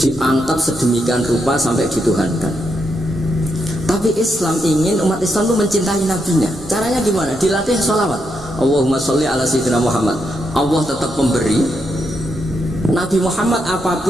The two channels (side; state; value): both; normal; correlation 0.81